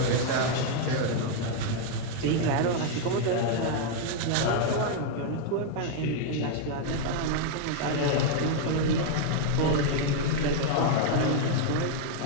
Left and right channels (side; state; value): both; different; correlation 0.00